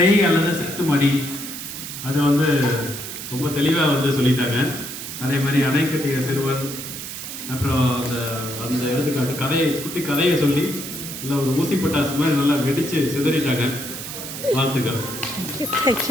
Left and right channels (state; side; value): noise; right; hiss, 8 dB below the sound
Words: அல்லது செத்துமடி அதை வந்து ரொம்ப தெளிவாக வந்து சொல்லிட்டாங்க. அதே மாதிரி அணை கட்டிய சிறுவன், அப்புறம் அந்த அந்த எடுத்துக்காட்டு கதையை, குட்டி கதையை சொல்லி நல்லா ஒரு ஊசி பட்டாசு மாதிரி நல்லா வெடிச்சு சிதறிட்டாங்க. வாழ்த்துக்கள்.